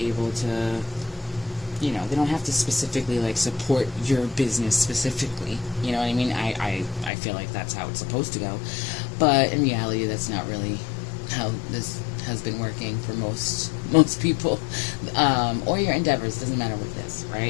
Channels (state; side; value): drops out; right; at 7.1 s